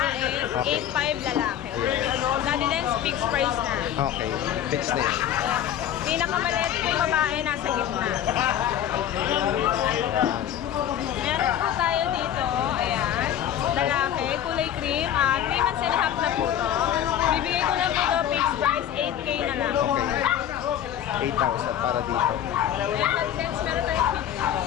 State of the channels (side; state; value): right; quieter; 10.5 dB